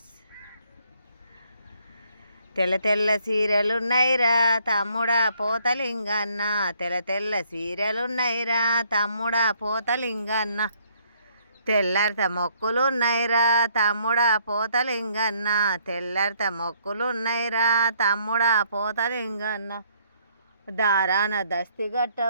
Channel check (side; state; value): both; inverted; correlation -0.67